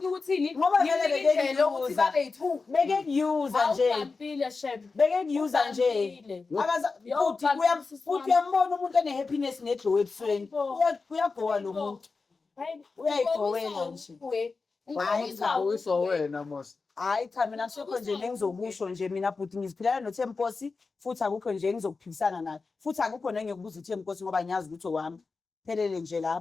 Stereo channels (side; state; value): right; quieter; 4.3 dB